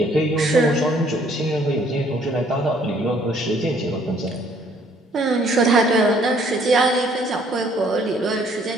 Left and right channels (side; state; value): both; normal; correlation 0.62